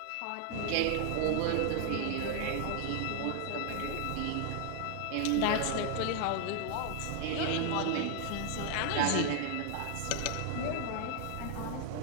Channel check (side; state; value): both; different; correlation 0.00